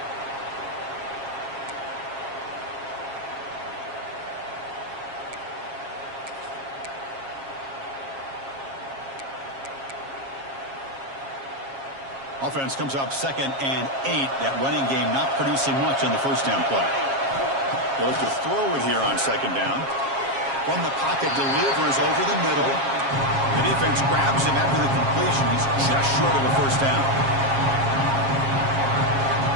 Offense comes up 2nd and 8. That running game not producing much on the first down play. They'll look to throw it here on 2nd down. From the pocket, delivers over the middle. The defense grabs him after the completion. He's just short of a first down.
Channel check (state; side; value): late; left; 7.4 ms